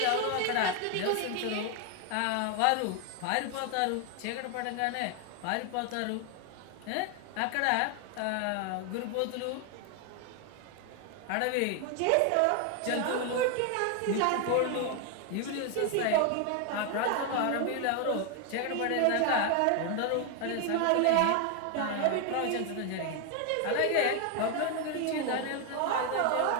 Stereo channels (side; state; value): both; different; correlation 0.01